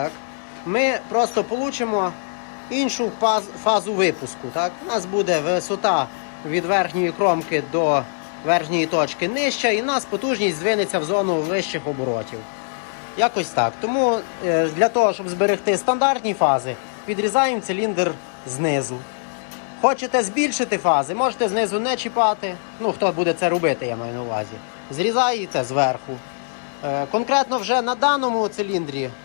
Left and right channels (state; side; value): silent; right; digital silence